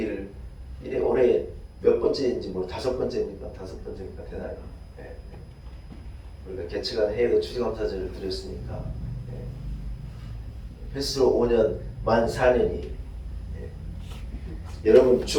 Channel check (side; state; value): both; identical; correlation 1.00